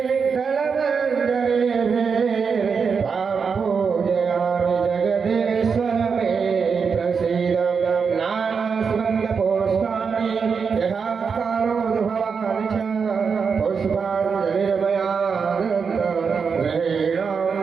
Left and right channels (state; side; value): quieter; left; 5.8 dB